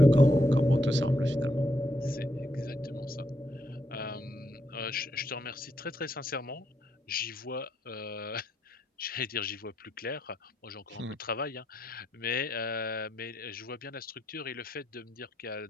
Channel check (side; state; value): both; normal; correlation 0.78